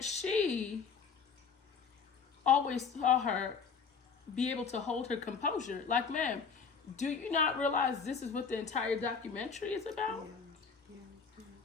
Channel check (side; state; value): right; quieter; 5.8 dB